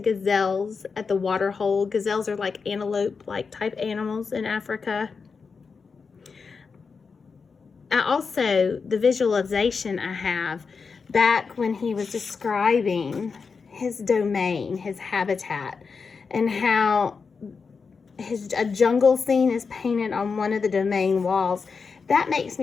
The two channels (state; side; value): quieter; right; 5.2 dB